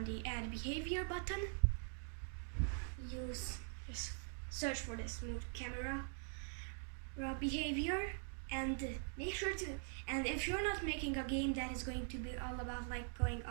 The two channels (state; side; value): silent; left; digital silence